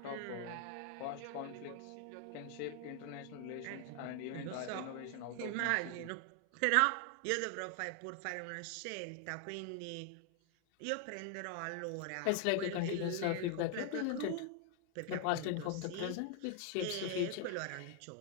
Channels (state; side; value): different; both; correlation 0.00